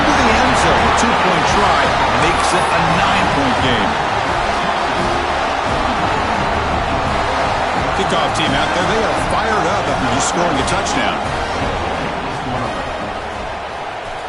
the end zone. A 2-point try makes it a 9-point game. Kickoff team out there. They are fired up after just scoring a touchdown.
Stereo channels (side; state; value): both; identical; correlation 1.00